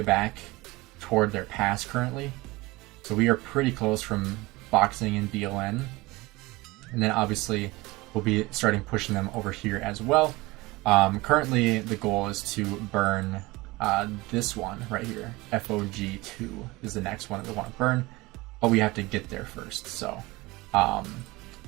back toward their pass currently. So we are pretty close from boxing in BLN. And then obviously we'll be starting pushing them over here as well. Currently the goal is to burn this one right here. FOG2 is the next one that we want to burn, but we have to get there first. So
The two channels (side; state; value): left; quieter; 21.6 dB